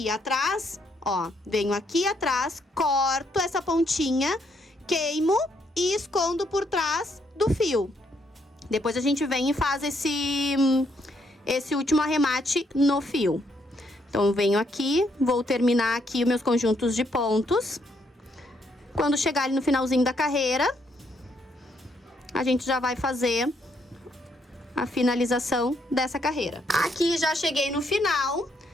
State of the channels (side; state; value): both; normal; correlation 0.73